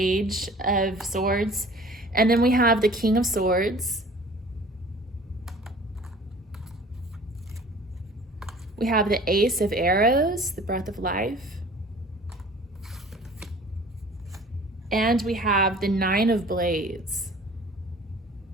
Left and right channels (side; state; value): both; normal; correlation 0.48